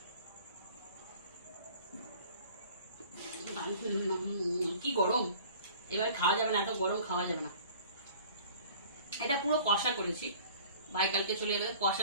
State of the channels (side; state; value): both; inverted; correlation -0.48